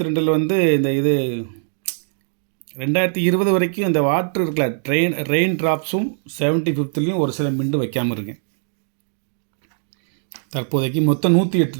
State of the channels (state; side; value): silent; left; digital silence